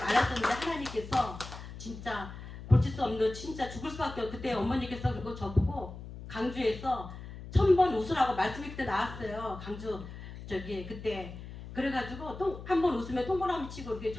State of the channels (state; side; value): noise; left; hum, 12 dB below the sound